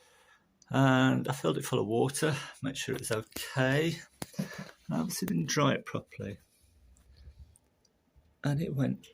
and I filled it full of water, make sure it was okay, and I obviously didn't dry it properly, and it went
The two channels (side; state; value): both; identical; correlation 1.00